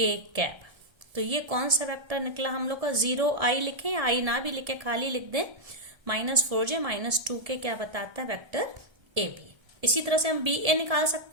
कैप। तो ये कौन सा वेक्टर निकला हम लोग का, 0 आई लिखे या आई ना भी लिखे, खाली लिख दें माइनस 4j माइनस 2k क्या बताता है, वेक्टर ए बी। इसी तरह से हम बी ए निकाल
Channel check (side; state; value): left; late; 1.7 ms